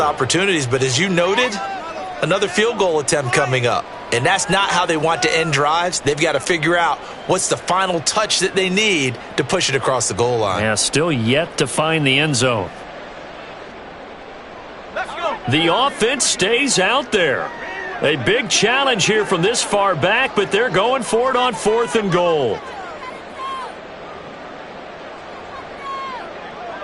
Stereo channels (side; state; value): both; identical; correlation 1.00